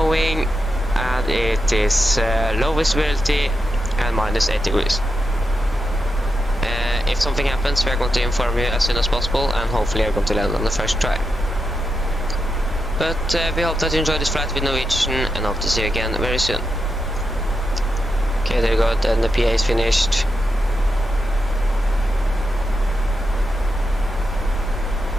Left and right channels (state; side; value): normal; both; correlation 0.86